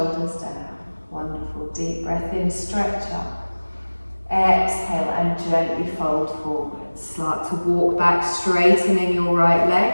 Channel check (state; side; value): inverted; both; correlation -1.00